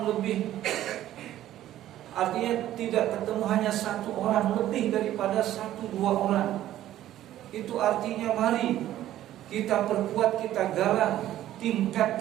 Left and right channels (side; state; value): left; quieter; 13.1 dB